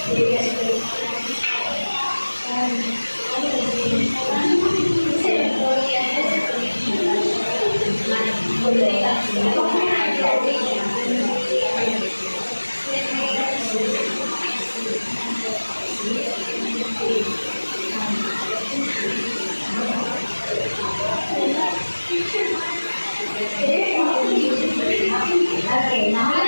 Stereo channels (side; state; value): both; inverted; correlation -1.00